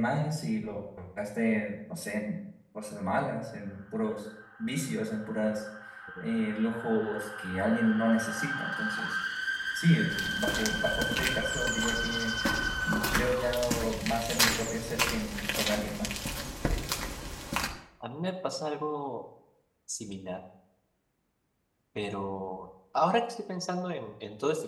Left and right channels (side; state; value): both; identical; correlation 1.00